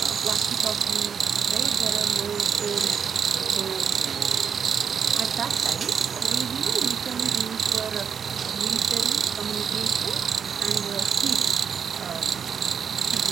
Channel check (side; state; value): left; quieter; 7.1 dB